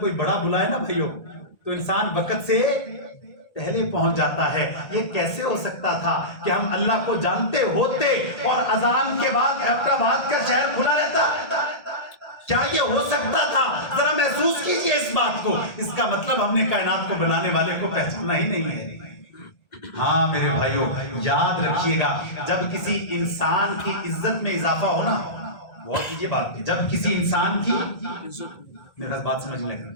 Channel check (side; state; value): right; late; 1.8 ms